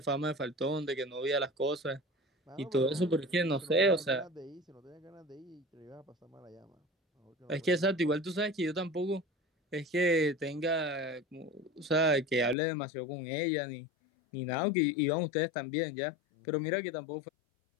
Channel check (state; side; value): drops out; right; at 12.6 s